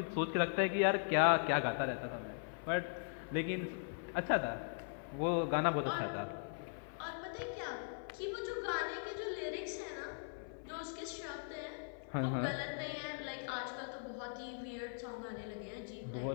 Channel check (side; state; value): right; silent; 51 dB below the other